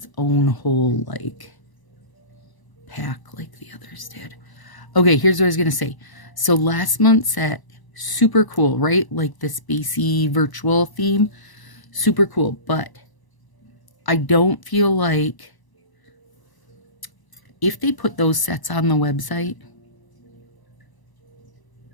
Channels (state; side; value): late; right; 1.0 ms